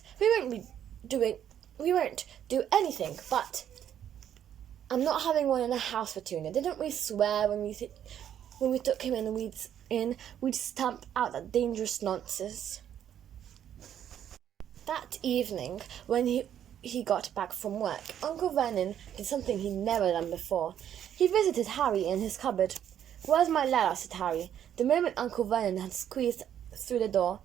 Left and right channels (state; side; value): quieter; left; 9.9 dB